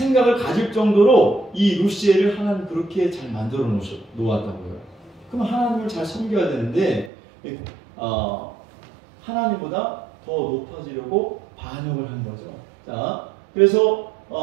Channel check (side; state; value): left; drops out; at 7.1 s